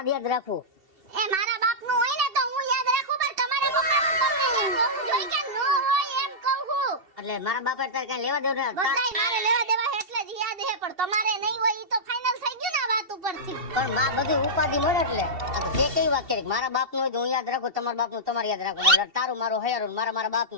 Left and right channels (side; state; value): left; late; 2.7 ms